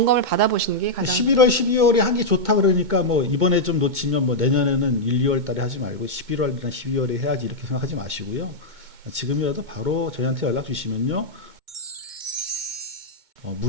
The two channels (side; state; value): left; late; 2.2 ms